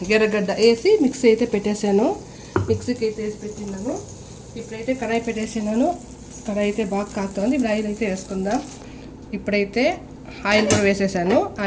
ఎర్రగడ్డ వేసి మిక్సీ అయితే పెట్టేశాను. మిక్సీకి అయితే వేసి పెట్టినాను. ఇప్పుడైతే కడాయి పెట్టేసినాను. కడాయి అయితే బాగా కాగుతుంది. ఇప్పుడు ఆయిల్ అయితే వేసుకుందాం. ఇప్పుడైతే ఆయిల్ కూడా వేసేసాను.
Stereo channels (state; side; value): identical; both; correlation 1.00